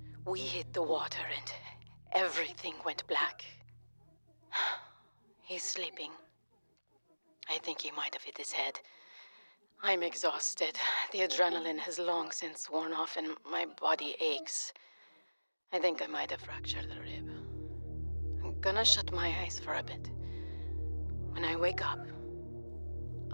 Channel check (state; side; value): inverted; both; correlation -1.00